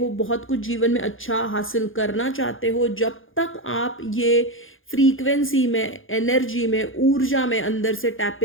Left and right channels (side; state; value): right; late; 0.59 ms